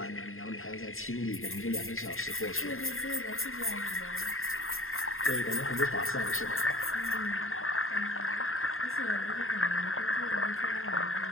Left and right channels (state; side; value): late; right; 0.61 ms